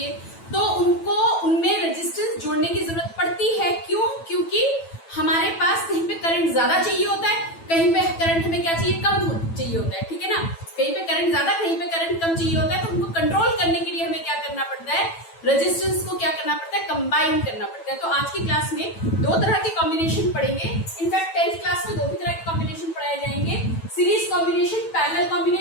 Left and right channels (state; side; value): late; right; 9.1 ms